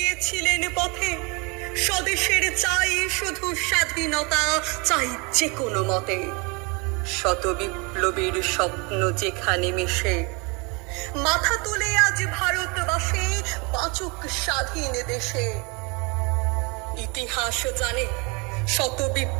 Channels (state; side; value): quieter; left; 29.9 dB